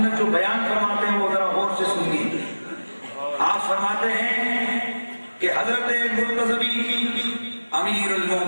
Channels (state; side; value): inverted; both; correlation -1.00